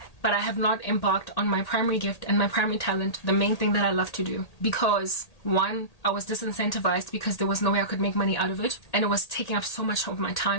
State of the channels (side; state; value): right; late; 1.8 ms